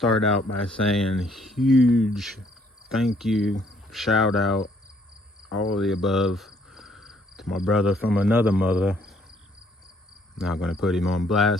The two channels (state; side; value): normal; both; correlation 0.65